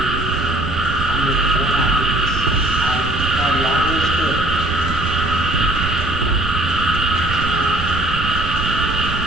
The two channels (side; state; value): right; noise; rumble, 6 dB below the sound